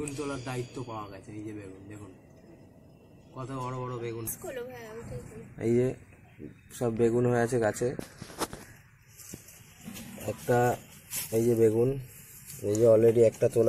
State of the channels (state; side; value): identical; both; correlation 1.00